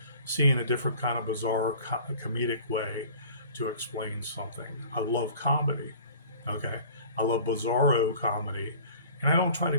seeing a different kind of bizarre comedic way to explain something. I love comedy. Okay. I love bizarro comedy. And I don't try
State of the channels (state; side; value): inverted; both; correlation -0.46